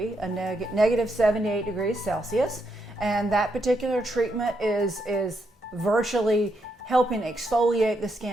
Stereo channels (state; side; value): normal; both; correlation 0.79